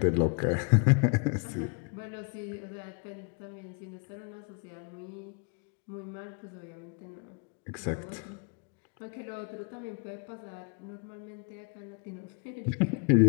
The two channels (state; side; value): quieter; right; 36.6 dB